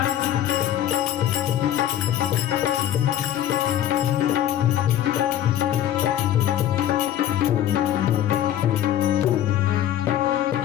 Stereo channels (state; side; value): quieter; right; 11.6 dB